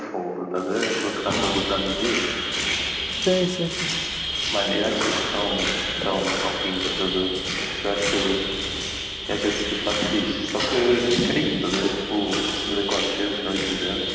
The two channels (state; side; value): identical; both; correlation 1.00